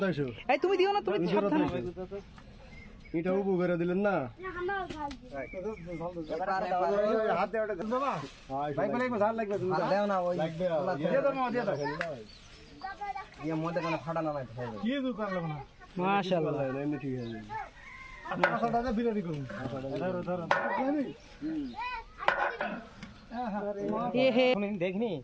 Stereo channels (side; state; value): both; identical; correlation 1.00